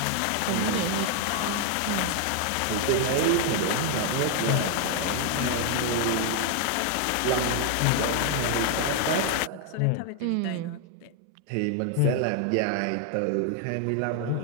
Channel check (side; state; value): both; different; correlation 0.00